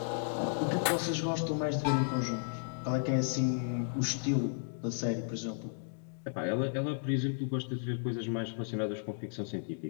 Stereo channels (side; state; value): right; silent; digital silence